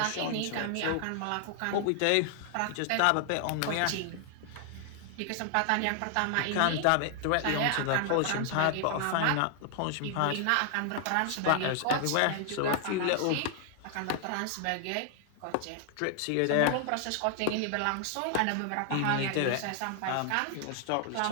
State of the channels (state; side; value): different; both; correlation 0.00